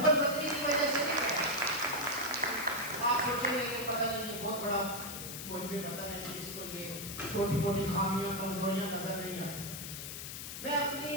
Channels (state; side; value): noise; left; hiss, 8 dB below the sound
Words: بدلی کی وجہ سے نہیں کر رہا. آپ سوچیں گے کہ پتہ نہیں یہ بہت بڑا, مجھے بھی پتہ نہیں کہ اس کو یہ چھوٹی موٹی خامیاں, کمزوریاں نظر نہیں آتی. میں اپنی